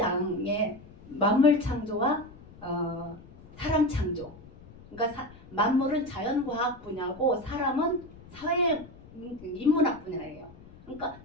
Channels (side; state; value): left; noise; rumble, 21 dB below the sound